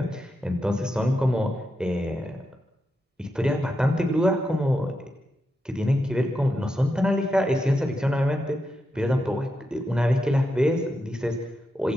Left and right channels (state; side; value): normal; both; correlation 0.86